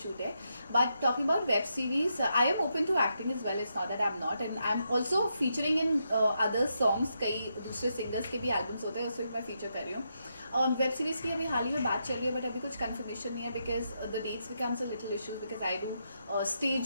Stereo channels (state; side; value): inverted; both; correlation -0.82